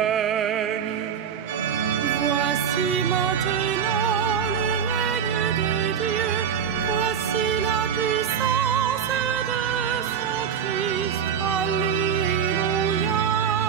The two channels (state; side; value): quieter; left; 7.8 dB